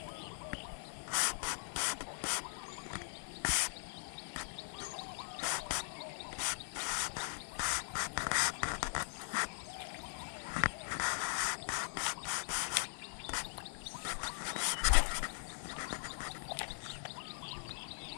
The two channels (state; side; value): silent; right; digital silence